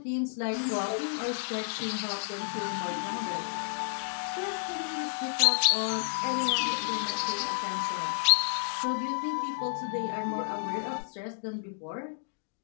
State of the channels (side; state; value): right; silent; digital silence